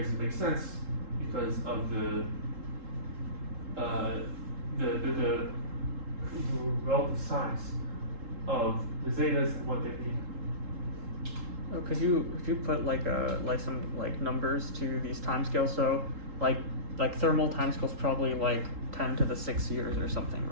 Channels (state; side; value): late; left; 3.7 ms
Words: make sense because of the relative size of the zetas and what they mean. Oh, could you put like some numbers to these timescales? So like thermal timescales probably like 10 to the 6 years or something,